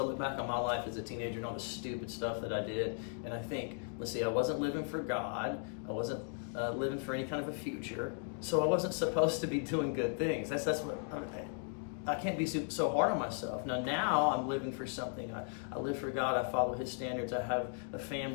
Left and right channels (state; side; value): silent; right; 53 dB below the other